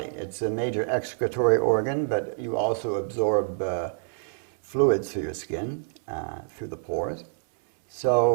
It's a major excretory organ, but you also absorb fluids through your skin, through the pores.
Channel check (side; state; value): left; silent; 60 dB below the other